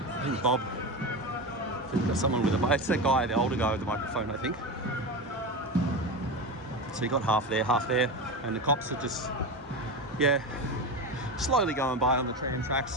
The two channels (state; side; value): normal; both; correlation 0.20